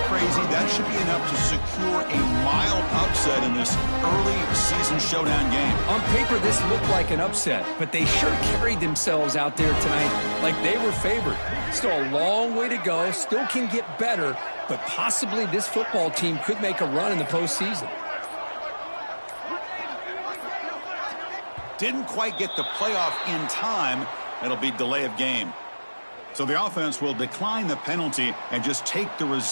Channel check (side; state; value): both; inverted; correlation -1.00